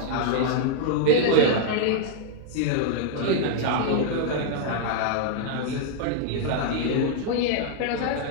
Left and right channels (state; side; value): different; both; correlation 0.00